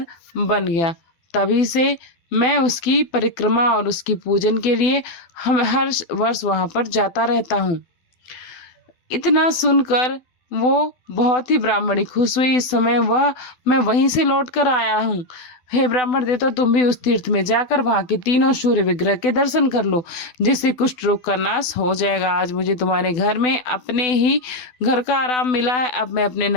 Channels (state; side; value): late; right; 12 ms